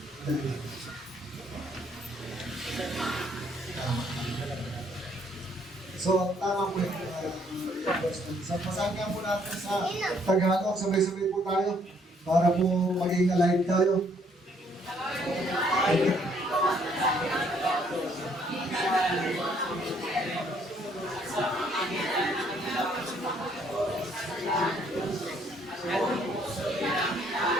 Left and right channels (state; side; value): normal; both; correlation 0.66